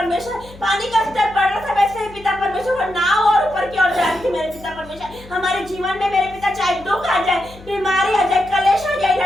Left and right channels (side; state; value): left; noise; hum, 20 dB below the sound